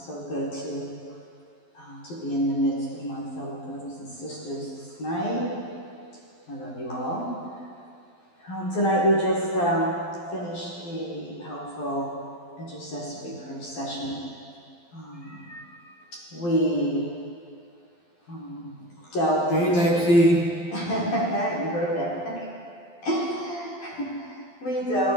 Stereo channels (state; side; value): late; right; 12 ms